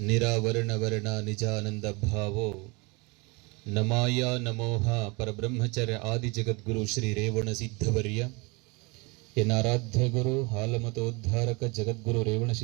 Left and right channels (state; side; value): quieter; left; 27.8 dB